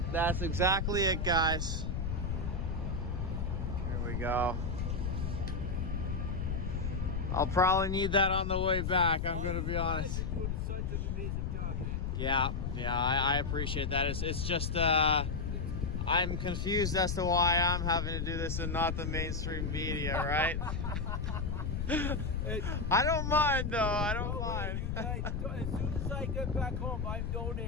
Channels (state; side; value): noise; left; rumble, 2 dB below the sound